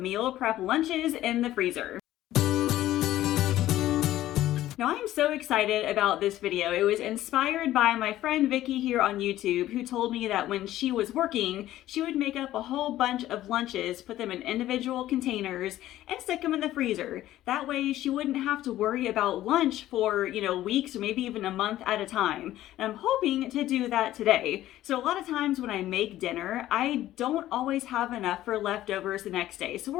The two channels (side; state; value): right; quieter; 14.1 dB